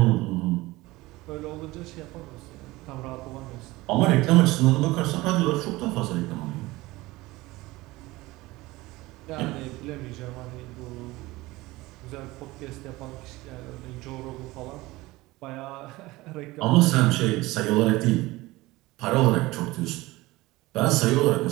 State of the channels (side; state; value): left; quieter; 19.9 dB